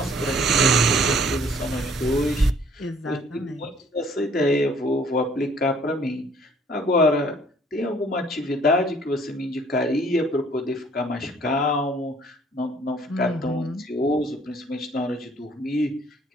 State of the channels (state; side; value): normal; both; correlation 0.58